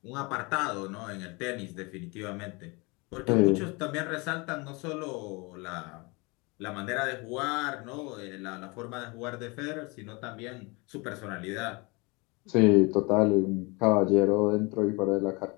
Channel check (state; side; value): quieter; right; 27.6 dB